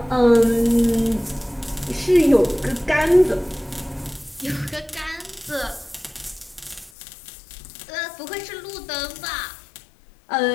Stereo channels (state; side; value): drops out; right; at 6.9 s